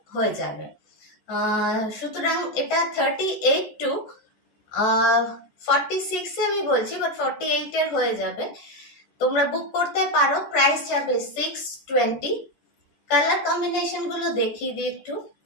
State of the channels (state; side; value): late; right; 14 ms